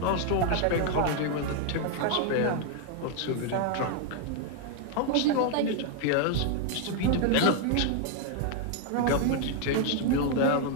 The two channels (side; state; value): both; different; correlation 0.00